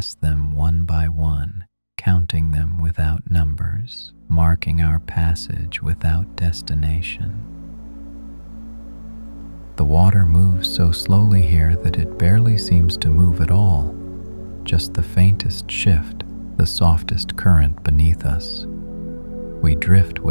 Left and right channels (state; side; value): inverted; both; correlation -1.00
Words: them one by one, counting them without numbers, marking our passage without destination. The water moves so slowly here that it barely seems to move at all, just the faintest shift, the softest current beneath us. We drift